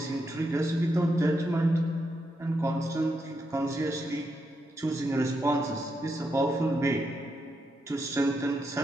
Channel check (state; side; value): normal; both; correlation 0.82